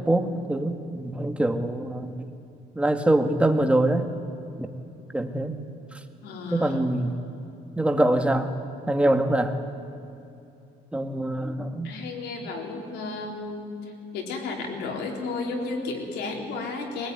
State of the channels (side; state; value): both; normal; correlation 0.85